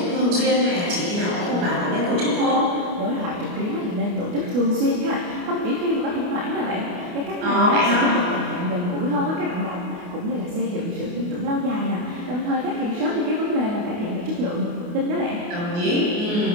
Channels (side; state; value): left; late; 28 ms